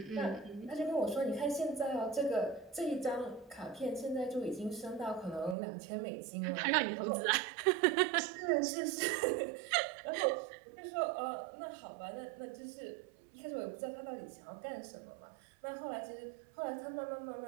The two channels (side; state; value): left; drops out; at 5.6 s